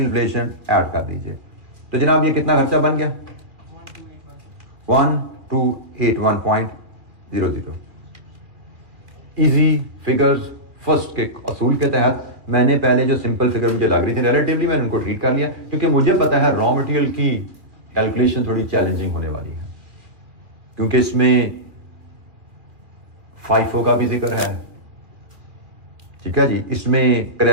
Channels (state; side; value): late; left; 2.3 ms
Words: ऐड कर दीजिए। तो जनाब ये कितना खर्चा बन गया? 1281.00। इजी फिगर्स फर्स्ट के असूल के तहत मैंने पहले जो सिंपल फिगर मुझे लग रही थी रिलेटिवली मैंने उनको ट्रीट कर लिया, क्योंकि मुझे पता है रॉ मटेरियल की कैलकुलेशन थोड़ी चैलेंजिंग होने वाली है, क्योंकि इसमें FIFO का भी जिक्र है, ठीक है जी, इसमें